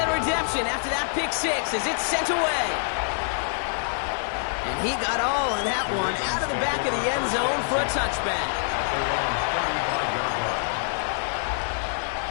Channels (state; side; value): silent; right; digital silence